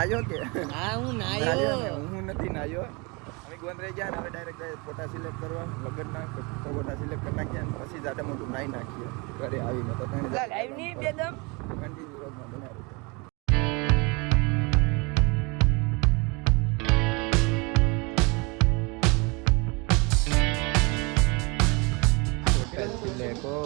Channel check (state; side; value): quieter; left; 28.7 dB